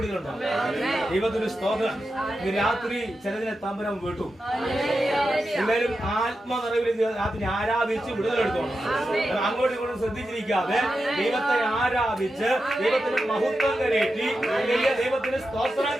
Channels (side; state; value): both; normal; correlation 0.90